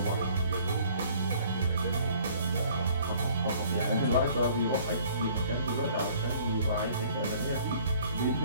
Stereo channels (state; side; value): inverted; both; correlation -0.56